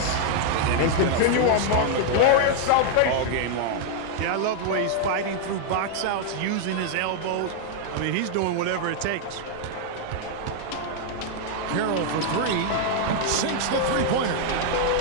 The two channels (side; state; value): both; different; correlation 0.00